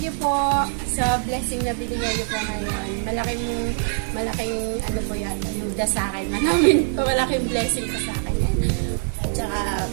you po sa blessing na binigay niyo po ngayon. Malaking ano po yata, yung sa akin. Malaking blessing po sa akin yan. At saka,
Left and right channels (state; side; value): silent; left; digital silence